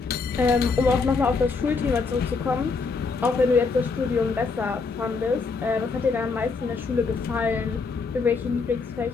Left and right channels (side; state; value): right; quieter; 4.5 dB